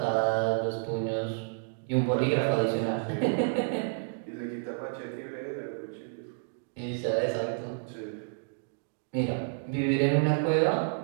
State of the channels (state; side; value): silent; left; digital silence